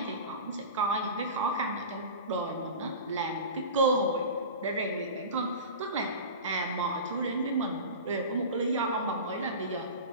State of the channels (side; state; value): both; inverted; correlation -0.32